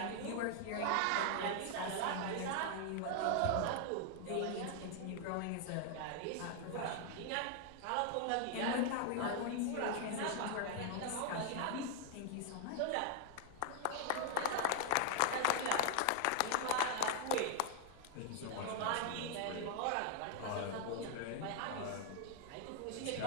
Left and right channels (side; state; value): both; different; correlation 0.00